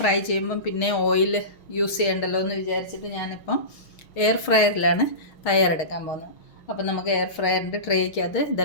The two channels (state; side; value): late; right; 6.4 ms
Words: ചെയ്യുമ്പം പിന്നെ ഓയിൽ യൂസ് ചെയ്യണ്ടല്ലോ എന്ന് വിചാരിച്ചിട്ട് ഞാനിപ്പം എയർ ഫ്രയറിലാണ് തയ്യാറെടുക്കാൻ പോകുന്നത്. അപ്പോൾ നമുക്ക് എയർ ഫ്രയറിൻ്റെ ട്രേക്കകത്ത്